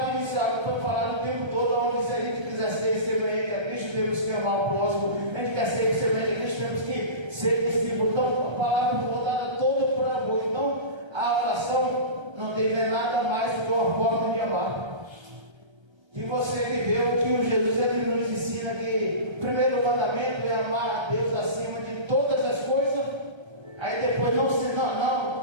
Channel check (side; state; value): left; late; 1.3 ms